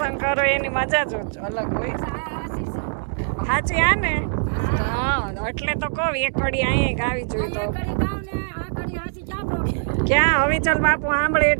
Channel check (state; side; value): silent; left; digital silence